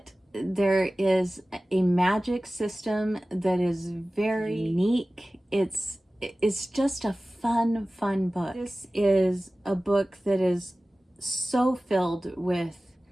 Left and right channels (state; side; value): normal; both; correlation 0.97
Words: there is a magic system that is very unique. It's just a fun book. This is a book that is so filled with